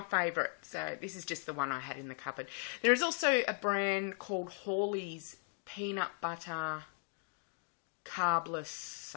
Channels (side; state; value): right; silent; 53 dB below the other